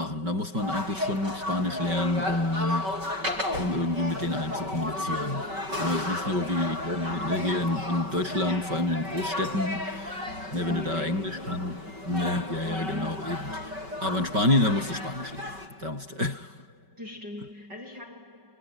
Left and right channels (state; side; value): late; left; 5.2 ms